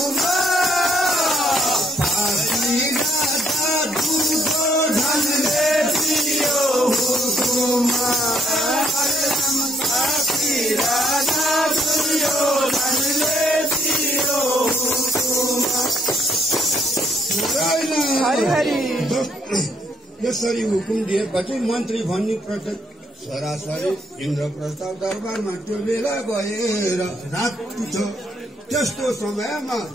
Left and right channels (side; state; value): both; normal; correlation 0.69